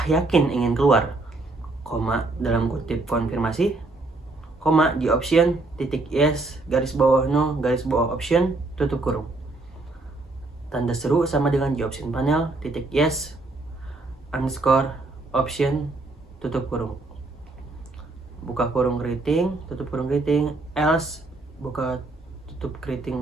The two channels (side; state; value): left; quieter; 3.2 dB